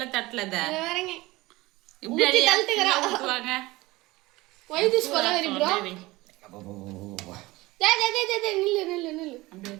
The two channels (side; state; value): left; quieter; 20.3 dB